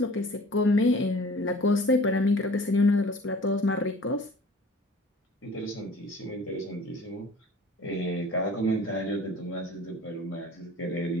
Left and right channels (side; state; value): both; normal; correlation 0.46